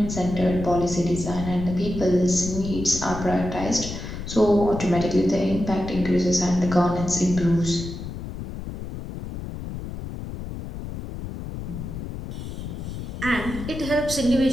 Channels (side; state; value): left; noise; rumble, 8 dB below the sound